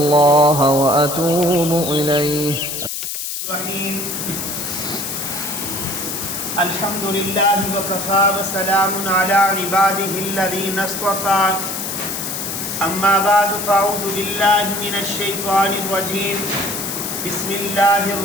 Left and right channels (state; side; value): noise; left; hiss, 5 dB below the sound